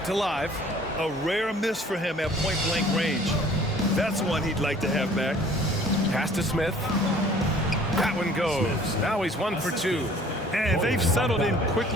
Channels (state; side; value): normal; both; correlation 0.53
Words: alive. A rare miss for him at point-blank range. That's one he'd like to have back. Pass to Smith. That one goes. Now he's 1 for 2. And they've settled in